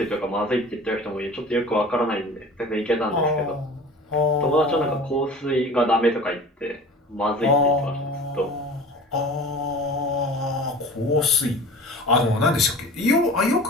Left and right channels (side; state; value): both; normal; correlation 0.40